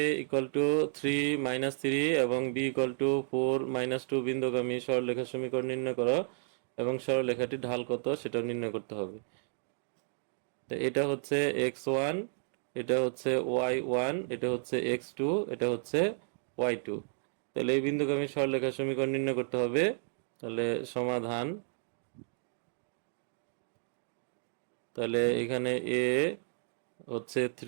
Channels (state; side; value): silent; left; digital silence